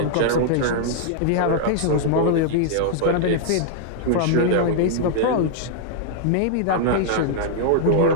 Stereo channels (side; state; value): both; different; correlation -0.01